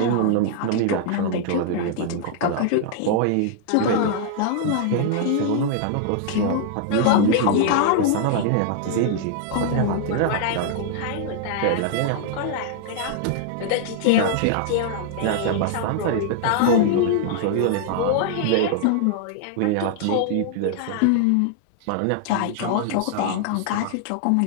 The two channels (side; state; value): both; different; correlation -0.01